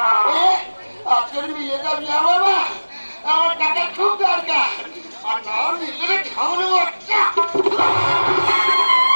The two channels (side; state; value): both; inverted; correlation -1.00